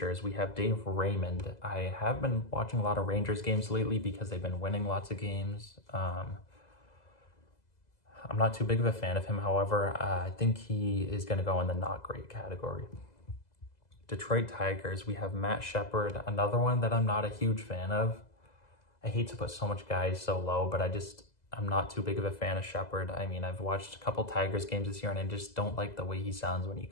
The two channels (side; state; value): right; late; 2.0 ms